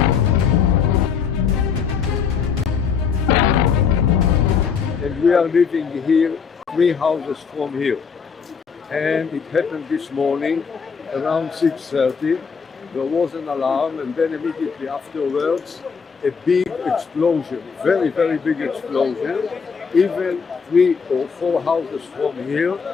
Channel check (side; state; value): right; quieter; 6.1 dB